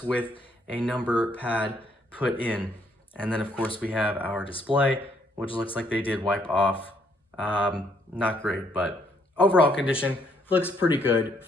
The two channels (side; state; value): both; normal; correlation 0.69